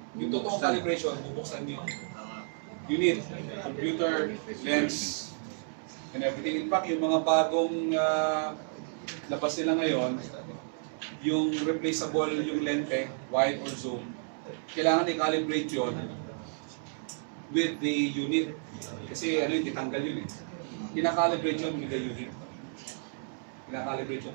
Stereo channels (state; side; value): silent; left; digital silence